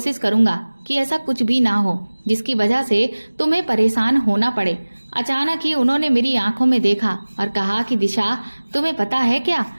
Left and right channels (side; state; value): both; inverted; correlation -1.00